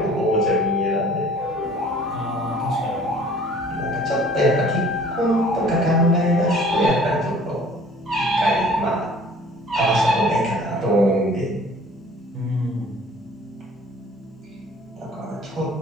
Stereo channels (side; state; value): both; normal; correlation 0.51